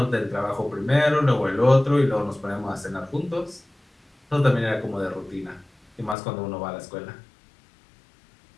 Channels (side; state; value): right; drops out; at 6.2 s